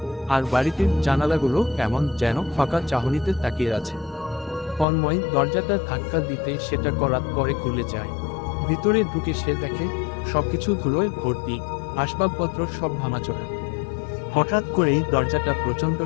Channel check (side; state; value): right; drops out; at 4.9 s